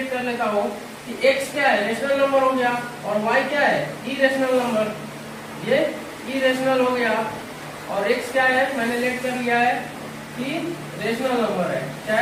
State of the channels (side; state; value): both; identical; correlation 1.00